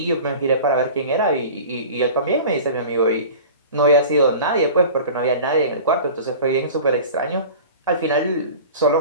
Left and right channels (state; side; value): inverted; both; correlation -0.38